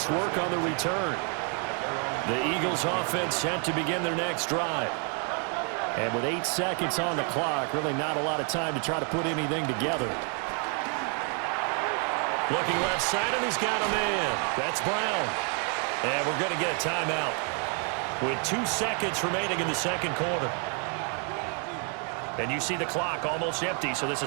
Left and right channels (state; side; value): quieter; left; 39.5 dB